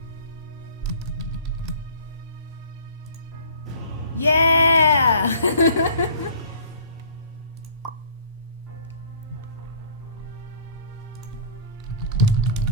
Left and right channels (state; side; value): inverted; both; correlation -0.48